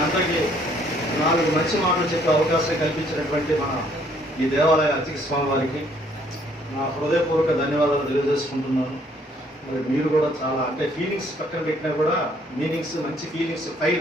అందరికీ 4 మంచి మాటలు చెప్పే అవకాశం కల్పించినటువంటి మన ఈ దేవాలయ అర్చక స్వామి వారికి నా హృదయపూర్వక ధన్యవాదాలు తెలియజేసుకుంటున్నాను. మరి మీరు కూడా చాలా అంటే ఫీలింగ్స్ పక్కన పెట్టినా కూడా మీనింగ్స్, మంచి ఫీలింగ్స్,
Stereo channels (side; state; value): both; normal; correlation 0.64